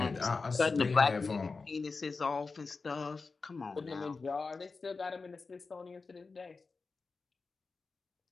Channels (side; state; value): right; quieter; 4.3 dB